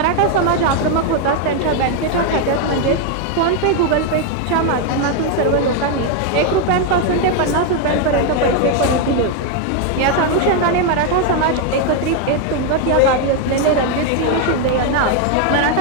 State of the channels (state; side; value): different; both; correlation 0.01